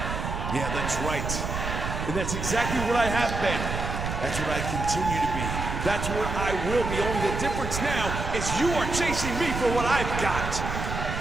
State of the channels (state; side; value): noise; right; rumble, 4 dB below the sound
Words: Yeah, that's right. And that's exactly what I have been. That's what I continue to be. That's what I will be. Only the difference now is you are chasing me for what I've got.